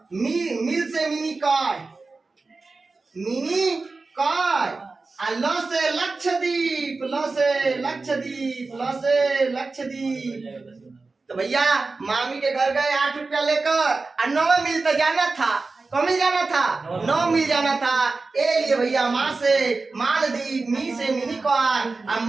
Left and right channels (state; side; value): quieter; left; 3.8 dB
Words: मील से मिनी काय, मिनी काय। ल से लक्षद्वीप, ल से लक्षद्वीप, ल से लक्षद्वीप। तो भैया मामी के घर गए 8 रुपया लेकर, और 9 मील तो जाना था। कौन मिल जाना था? 9 मिल जाना था। ए लिए भैया माँ से मालदीव, मी से मिनी काय,